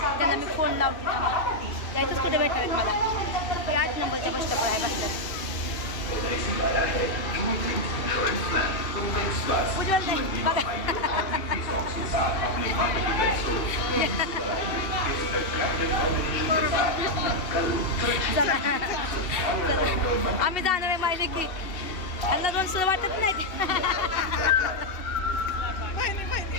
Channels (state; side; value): late; right; 2.7 ms